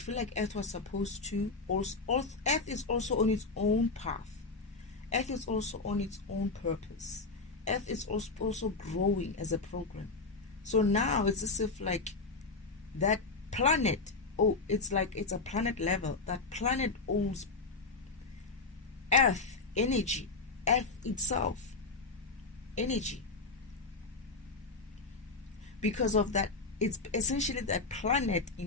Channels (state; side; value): quieter; right; 3.9 dB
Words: like Earth was supposed to, also, Earth is also on its own path. Earth is also on its own purpose. Earth is also growing as a program. So now it's as if like that planet, it's like it's a planet level. That planet owes Earth energy, Earth itself energy. Because of that, it's essentially that planet